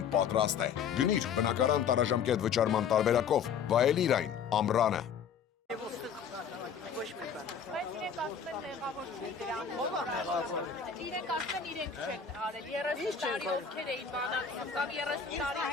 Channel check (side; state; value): right; quieter; 7.0 dB